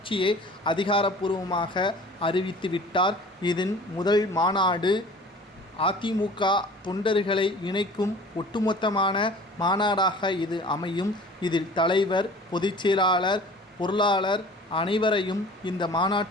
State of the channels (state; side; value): normal; both; correlation 0.45